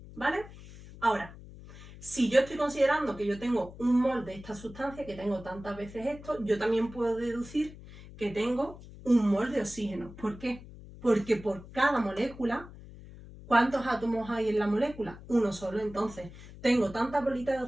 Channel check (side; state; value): left; noise; hum, 17 dB below the sound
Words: ¿Vale? Ahora, si yo estoy considerando que yo tengo un mol de esta sustancia, que tengo tantas veces esto, yo también puedo deducir que tengo un mol de oxígeno. ¿Por qué? Porque por cada molécula, ¿cuántos átomos hay en la molécula? Uno solo. Entonces, tengo tantas